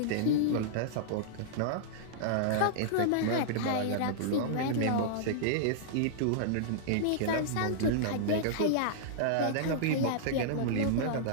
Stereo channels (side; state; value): both; different; correlation -0.02